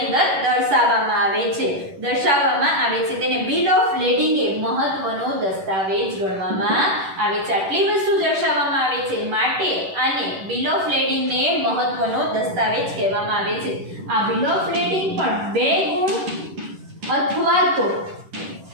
અંદર દર્શાવવામાં આવે છે. તેને બિલ ઓફ લેડિંગ એ મહત્વનો દસ્તાવેજ ગણવામાં આવે છે. આટલી વસ્તુ દર્શાવવામાં આવે છે માટે આને બિલ ઓફ લેડિંગ ને મહત્વનો દસ્તાવેજ કહેવામાં આવે છે. આ બિલ ઓફ લેડિંગ પણ 2 ગુણ અથવા તો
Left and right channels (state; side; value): late; left; 11 ms